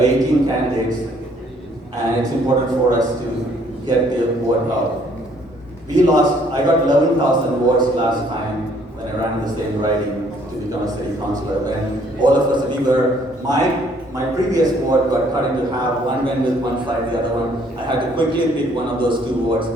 18 candidates, and it's important for us to get the vote out. I got 11,000 votes last time when I ran the same riding to become a city councillor. And all of us, we were my previous ward got cut into half. One went with one side, the other one. I had to quickly pick one of those two wards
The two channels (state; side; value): normal; both; correlation 0.63